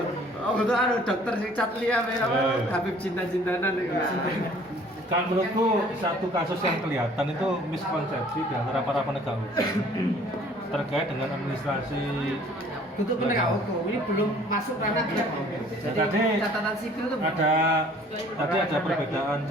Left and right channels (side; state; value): both; normal; correlation 0.54